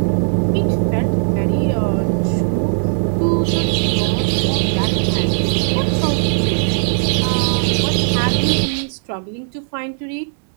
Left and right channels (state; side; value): silent; left; 67 dB below the other